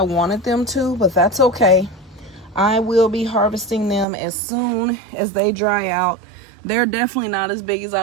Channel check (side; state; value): left; drops out; at 4.0 s